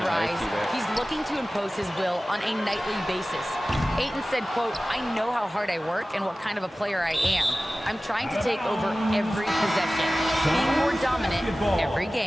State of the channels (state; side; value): normal; both; correlation 0.97